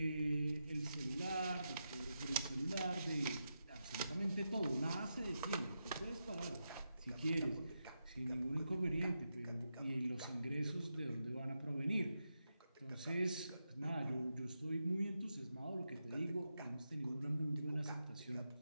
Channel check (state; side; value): inverted; both; correlation -0.87